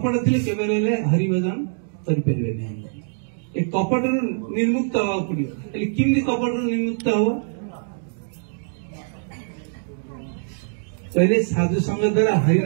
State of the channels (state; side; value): silent; left; digital silence